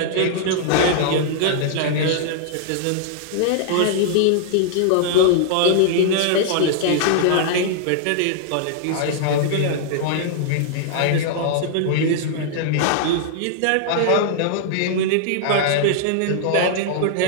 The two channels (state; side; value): different; both; correlation -0.01